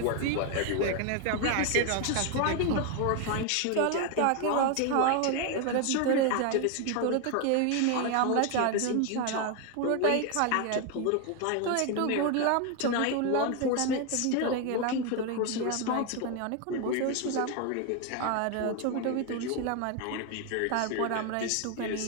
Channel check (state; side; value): different; both; correlation 0.01